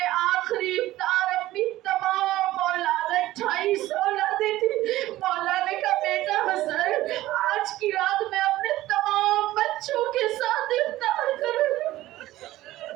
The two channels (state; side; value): quieter; left; 16.0 dB